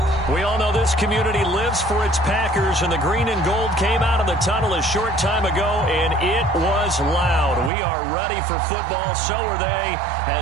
We all know this community lives for its Packers, and the green and gold came out of the tunnel a short time ago, and it was loud. We are ready for football, so are they,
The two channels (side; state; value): left; drops out; at 7.7 s